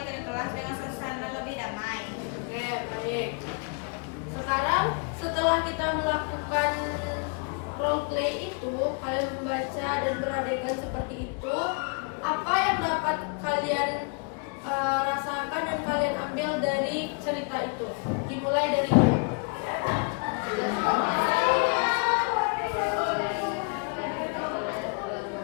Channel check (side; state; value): right; quieter; 36.2 dB